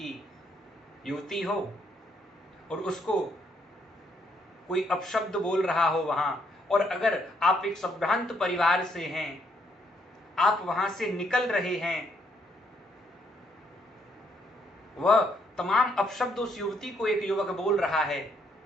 युवती हो और उसको कोई अपशब्द बोल रहा हो वहां, और अगर आप एक संभ्रांत परिवार से हैं, आप वहां से निकल रहे हैं, वह तमाम अपशब्द उस युवती को एक युवक बोल रहा है,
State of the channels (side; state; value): both; normal; correlation 0.72